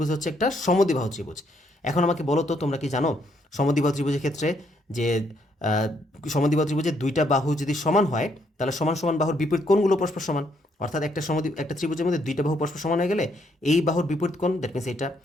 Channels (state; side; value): normal; both; correlation 0.72